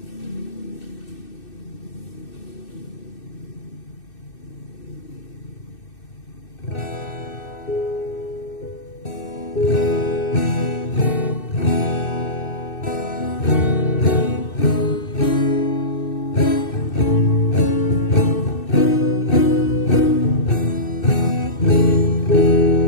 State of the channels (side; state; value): right; late; 2.6 ms